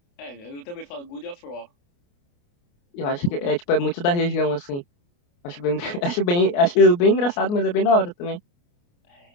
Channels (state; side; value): late; right; 29 ms